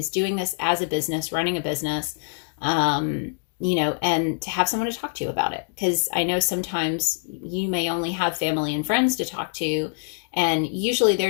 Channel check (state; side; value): silent; right; digital silence